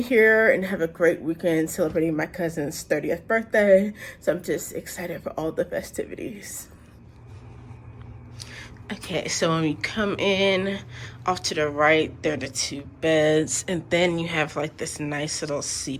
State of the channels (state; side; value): identical; both; correlation 1.00